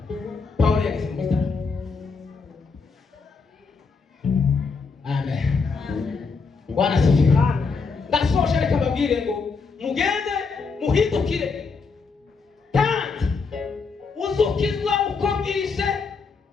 Pawulo yageze mu bitaramo. Amen. Bwana sifiwe. Ndasoje reka babwire ngo mugende muhindukire kandi uzukizwa uko bwije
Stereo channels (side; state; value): right; quieter; 4.8 dB